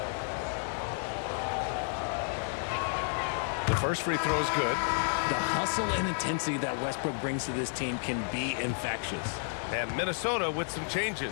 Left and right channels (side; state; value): right; silent; 57 dB below the other